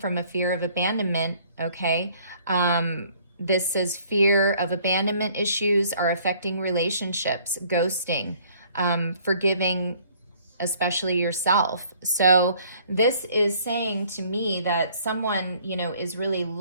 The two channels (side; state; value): both; inverted; correlation -0.59